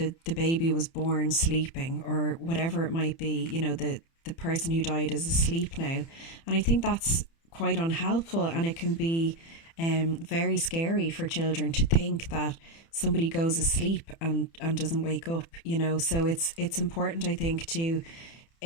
baby was born sleeping, or whatever it might be, the person who died is asleep now. And I think that's quite unhelpful, and it can be very scary for children to think that somebody goes asleep and doesn't wake up, So it's important, I think, to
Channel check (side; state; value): right; late; 30 ms